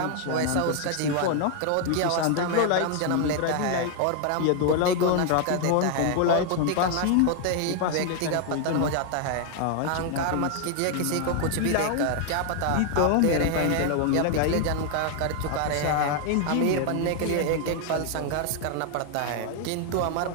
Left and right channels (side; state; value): both; different; correlation 0.00